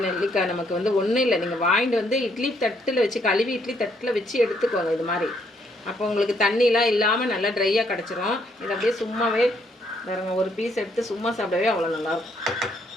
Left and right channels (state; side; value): normal; both; correlation 0.71